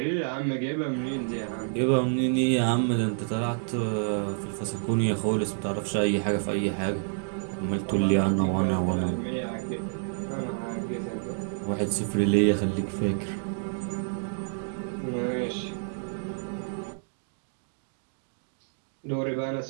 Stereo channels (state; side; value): silent; left; digital silence